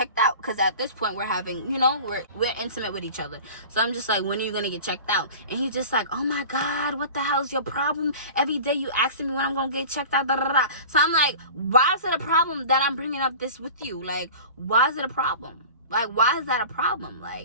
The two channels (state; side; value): inverted; both; correlation -0.38